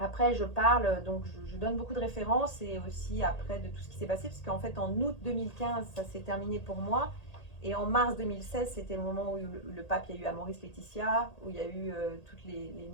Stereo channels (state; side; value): late; right; 1.8 ms